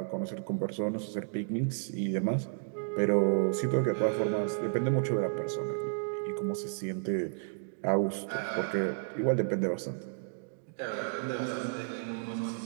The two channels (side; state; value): left; silent; digital silence